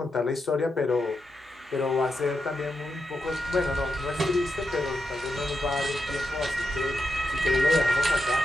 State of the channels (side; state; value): both; normal; correlation 0.86